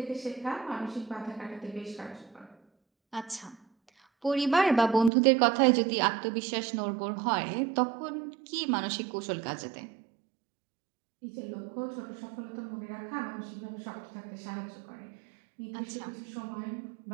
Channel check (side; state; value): left; drops out; at 5.1 s